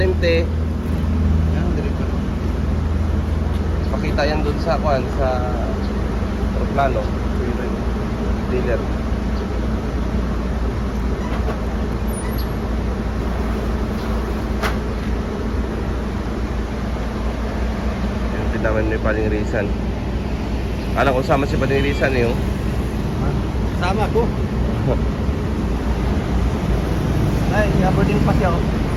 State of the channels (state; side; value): identical; both; correlation 1.00